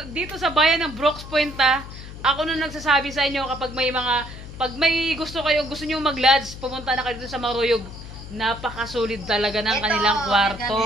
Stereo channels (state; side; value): noise; left; hum, 13 dB below the sound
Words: dito sa bayan ng Brooks Point, ako na nagsasabi sa inyo kapag may gusto nyo mag-lodge, pumunta na kayo dito sa Maruyog. Napakasulit talaga ng kanilang